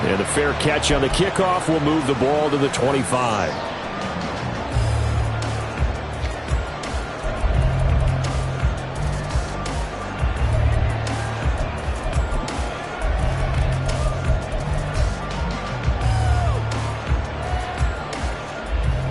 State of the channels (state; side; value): identical; both; correlation 1.00